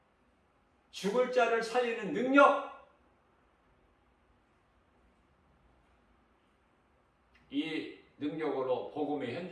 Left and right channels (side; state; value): both; identical; correlation 1.00